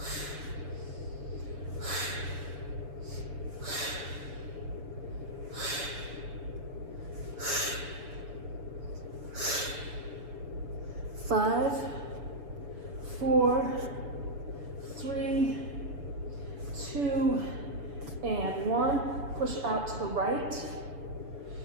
Five, 4, 3, 2, and 1. Push out to the right.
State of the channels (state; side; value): late; left; 7.0 ms